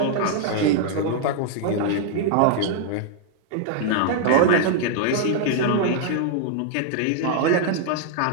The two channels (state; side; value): different; both; correlation 0.00